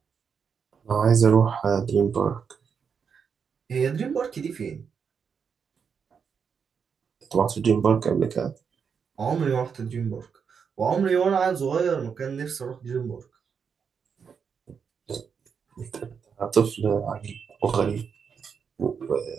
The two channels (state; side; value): quieter; left; 6.5 dB